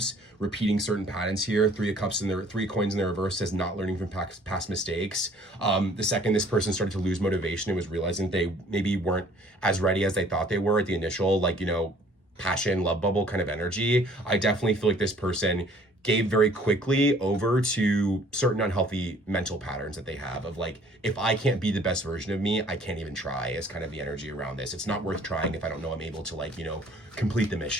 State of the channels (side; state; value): both; normal; correlation 0.56